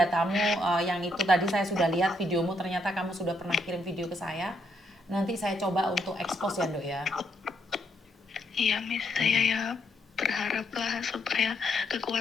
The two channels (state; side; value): normal; both; correlation 0.75